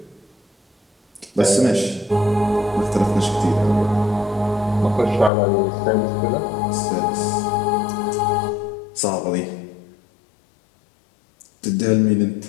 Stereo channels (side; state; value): right; drops out; at 5.3 s